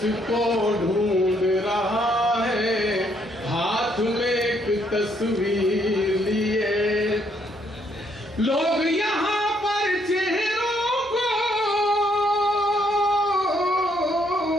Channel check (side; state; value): both; normal; correlation 0.71